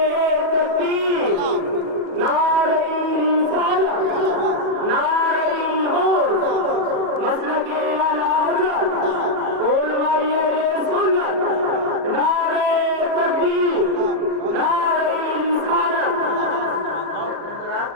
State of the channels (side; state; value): left; late; 37 ms